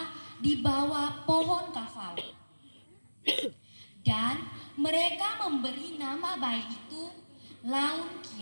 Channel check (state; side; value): inverted; both; correlation -1.00